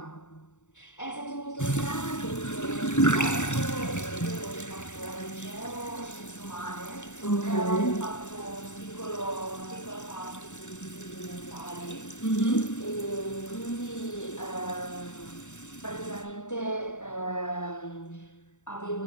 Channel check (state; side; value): late; right; 0.84 ms